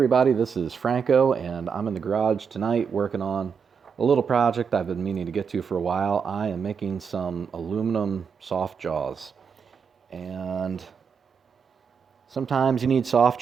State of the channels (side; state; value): left; quieter; 6.4 dB